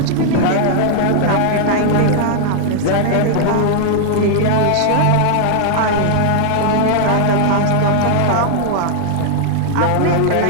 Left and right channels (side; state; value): both; different; correlation -0.01